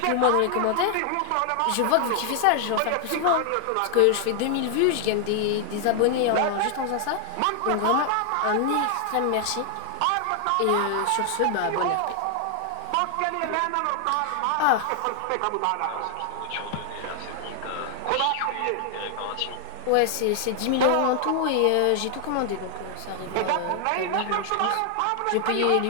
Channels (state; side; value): different; both; correlation 0.00